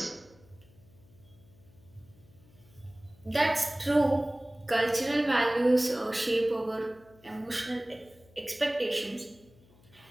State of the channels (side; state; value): left; noise; hum, 27 dB below the sound